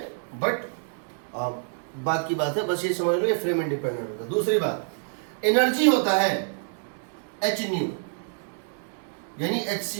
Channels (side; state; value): left; silent; 60 dB below the other